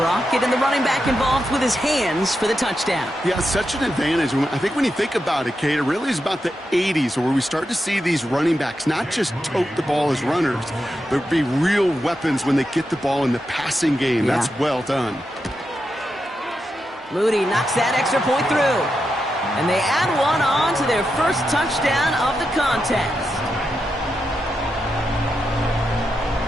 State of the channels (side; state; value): both; normal; correlation 0.87